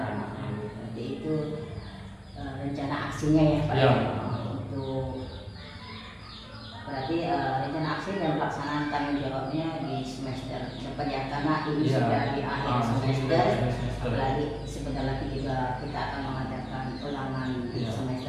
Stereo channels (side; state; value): both; identical; correlation 1.00